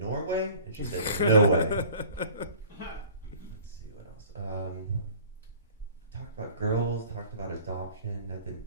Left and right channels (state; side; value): inverted; both; correlation -0.48